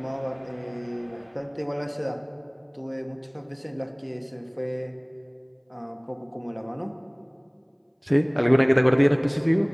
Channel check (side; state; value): both; identical; correlation 1.00